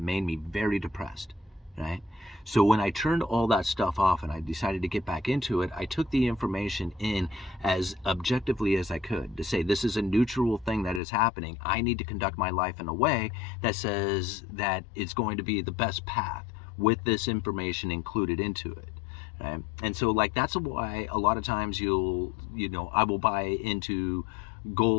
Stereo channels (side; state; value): right; drops out; at 11.0 s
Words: made me very depressed, right? So when I turned all that stuff off and I decided to get back into it, I took the information in as objectively as I could to say, this is a neutral thing that is happening. I need to conduct my life in a way that says that it's going to be the best path with this information included into it. Right? And so, like, that's why a lot of times I will buy into